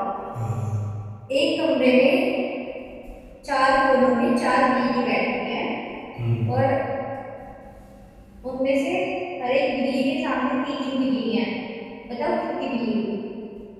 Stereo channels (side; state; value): both; identical; correlation 1.00